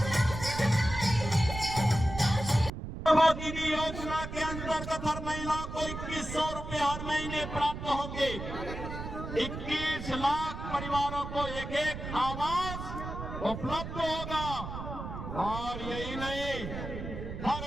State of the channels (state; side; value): noise; right; rumble, 7 dB below the sound